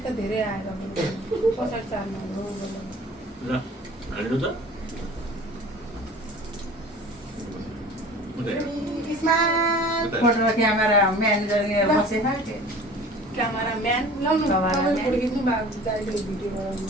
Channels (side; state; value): both; normal; correlation 0.44